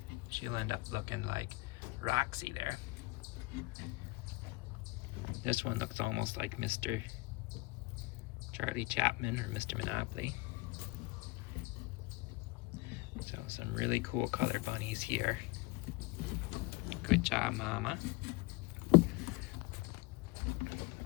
she'll end up looking like Roxy there. This one looks almost like Mr. Charlie Chapman or Mr. Monopoly. So some really cool color bunnies here. Good job, Mama.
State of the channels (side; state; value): right; quieter; 22.5 dB